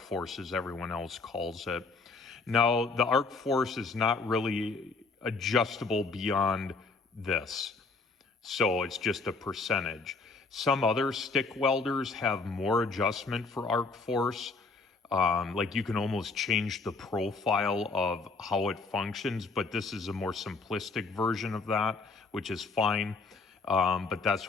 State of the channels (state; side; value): quieter; right; 4.0 dB